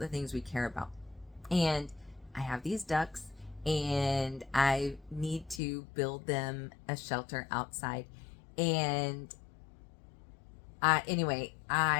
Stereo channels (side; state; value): right; drops out; at 5.6 s